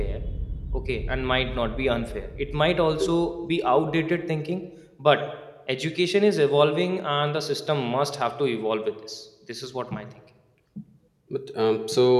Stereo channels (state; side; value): identical; both; correlation 1.00